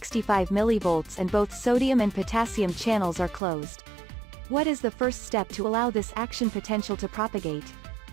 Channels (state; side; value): drops out; left; at 3.4 s